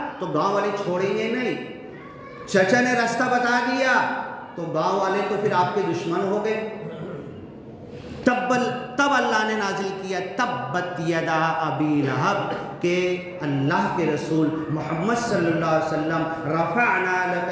تو گاؤں والے چھوڑیں گے نہیں، چچا نے راستہ بتا دیا تو گاؤں والے تو پھر آپ کے دشمن ہو گئے۔ تب اللہ نے نازل کیا تبت یدا ابی لہب، کہ اللہ کے رسول محمد صلی اللہ علیہ وسلم رفعنا لک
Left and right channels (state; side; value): identical; both; correlation 1.00